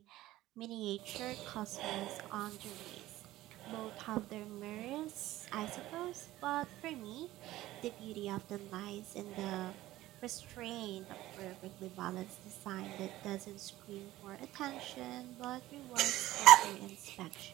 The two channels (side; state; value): left; quieter; 16.0 dB